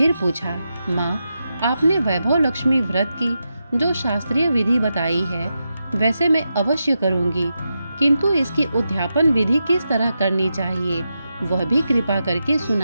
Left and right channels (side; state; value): both; inverted; correlation -0.88